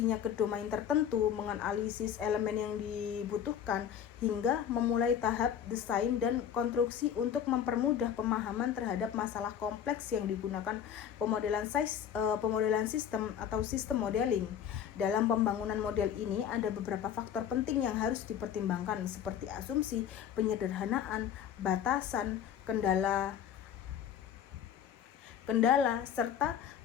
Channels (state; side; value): quieter; right; 9.0 dB